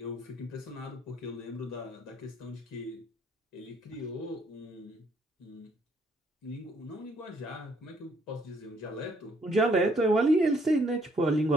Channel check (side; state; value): both; normal; correlation 0.67